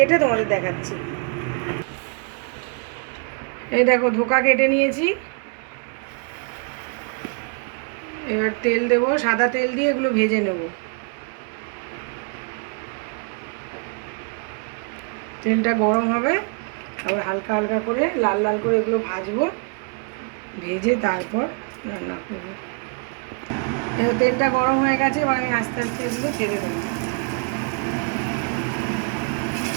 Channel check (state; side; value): quieter; left; 38.8 dB